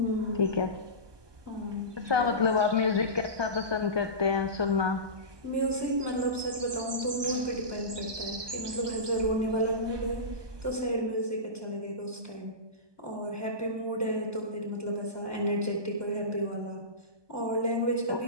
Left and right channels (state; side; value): late; left; 1.2 ms